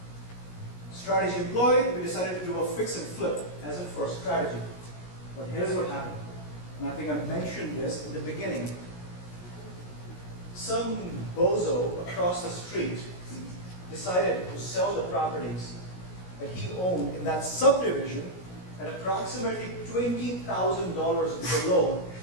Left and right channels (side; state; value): right; late; 17 ms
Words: Strategy employed, we decided to do a fix and flip as a first strategy. But here's what happened. And I think I mentioned this in the beginning. Some bozo across the street decided to sell the properties that he owned in that subdivision at approximately $20,000 below